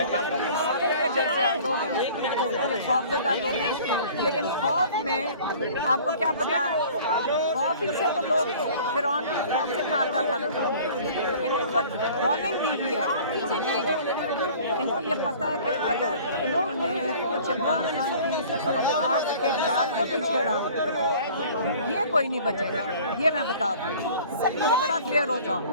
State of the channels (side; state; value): both; inverted; correlation -0.47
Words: یہ خوفزدہ لوگ ہیں، لیکن خوف میں آپ کو کیا پتا، خوف ہی سے تو لوگ فرعون کی خوف سے مارتا تھا لوگوں، لیکن ان کو وارننگ دی ہوئی ہے. ان کو یہ پتا ہے کہ اگر انہوں نے کچھ عمران خان کی بات کے بال کو بھی چھیڑا یہ کوئی نہیں بچے گا. یہ میں بتا دوں، یہ بڑا کلیئر ہو جاؤ.